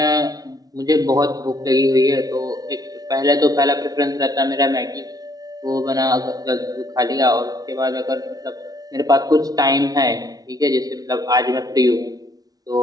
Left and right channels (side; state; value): left; late; 0.18 ms